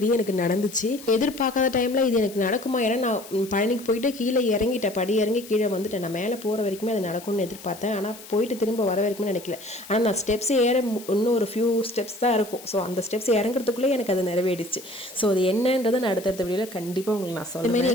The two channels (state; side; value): noise; left; hiss, 17 dB below the sound